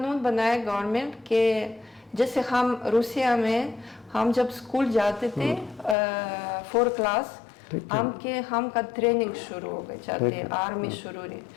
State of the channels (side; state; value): right; drops out; at 6.0 s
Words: बनाया गवर्नमेंट के, जैसे हम रूसिया में हम जब स्कूल जाते थे 4 क्लास, हम का ट्रेनिंग शुरू हो गए जाते, आर्मी शुरू नहीं,